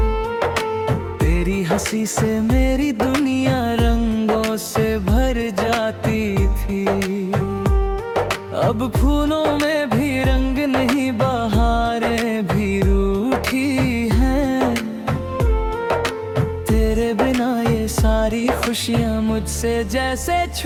तेरी हंसी से मेरी दुनिया रंगों से भर जाती थी। अब फूलों में भी रंग नहीं, बहारें भी रूठी हैं। तेरे बिना ये सारी खुशियाँ मुझसे जैसे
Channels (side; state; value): both; identical; correlation 1.00